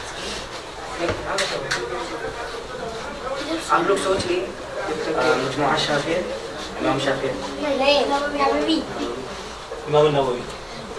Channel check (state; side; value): identical; both; correlation 1.00